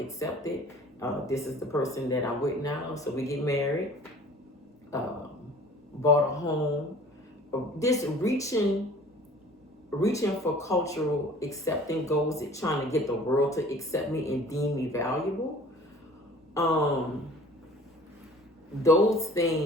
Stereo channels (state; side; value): normal; both; correlation 0.48